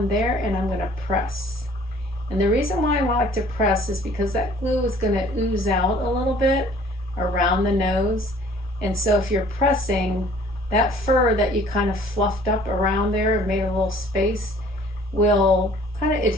there, and I'm going to press. And the reason why I like to press is because that glue is going to ooze out a little bit around the nose. And so if you're pressing, that fur that you kind of fluffed up around there and made a little space will kind of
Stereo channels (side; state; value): both; normal; correlation 0.54